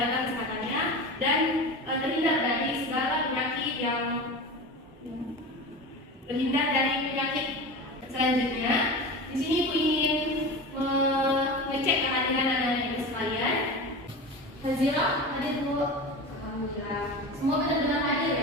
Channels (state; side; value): normal; both; correlation 0.29